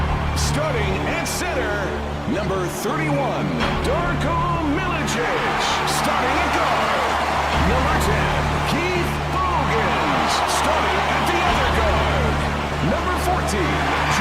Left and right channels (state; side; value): identical; both; correlation 1.00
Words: Starting at center, number 31, Darko Milicic. Starting at guard, number 10, Keith Bogans. Starting at the other guard, number 14,